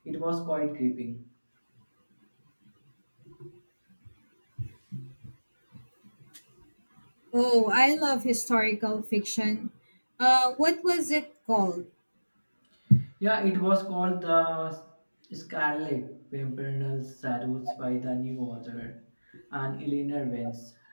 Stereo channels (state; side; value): inverted; both; correlation -1.00